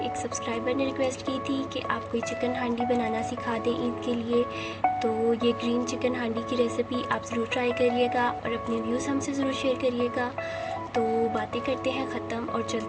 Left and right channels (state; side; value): identical; both; correlation 1.00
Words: सब्सक्राइबर ने रिक्वेस्ट की थी कि आप कोई चिकन हांडी बनाना सिखा दें ईद के लिए। तो ये ग्रीन चिकन हांडी की रेसिपी आप ज़रूर ट्राई करिएगा और अपने व्यूज़ हमसे ज़रूर शेयर करिएगा। तो बातें करते हैं ख़त्म और